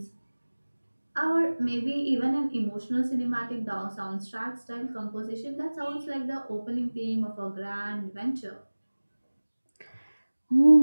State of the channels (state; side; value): inverted; both; correlation -1.00